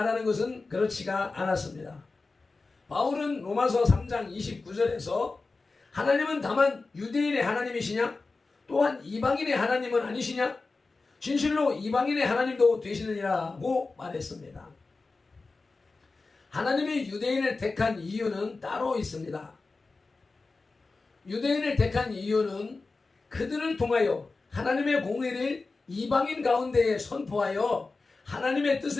것은 그렇지가 않았습니다. 바울은 로마서 3장 29절에서 하나님은 다만 유대인의 하나님이시냐? 또한 이방인의 하나님은 아니시냐? 진실로 이방인의 하나님도 되시느니라고 말했습니다. 하나님이 유대인을 택한 이유는 따로 있습니다. 유대인을 택한 이유는 그들을 통하여 하나님의 공의를 이방인 가운데에 선포하여 하나님의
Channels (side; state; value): right; quieter; 3.8 dB